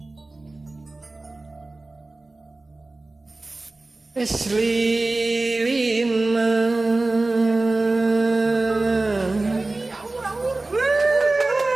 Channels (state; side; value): quieter; left; 3.1 dB